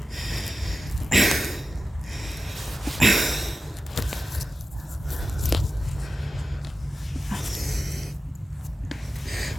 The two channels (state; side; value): normal; both; correlation 0.93